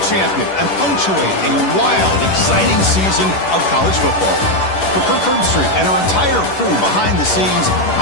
champion and punctuate a wild, exciting season of college football. For Kirk Herbstreit and our entire crew behind the scenes,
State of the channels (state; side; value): late; right; 11 ms